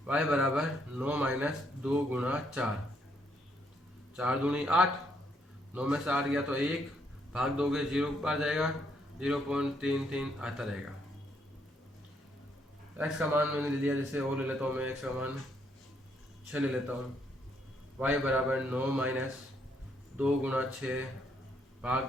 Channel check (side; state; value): both; normal; correlation 0.73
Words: y बराबर 9 माइनस 2 गुणा 4, 4 दूनी 8, 9 में से 8 गया तो 1 भाग दोगे 0 बार जाएगा, 0.33 आता रहेगा। x का मान मैंने ले लिया जैसे और ले लेता हूँ मैं, x का मान 6 ले लेता हूँ, y बराबर 9 माइनस 2 गुणा 6 भाग